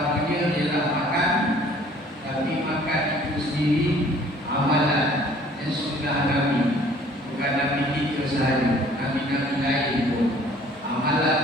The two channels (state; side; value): normal; both; correlation 0.55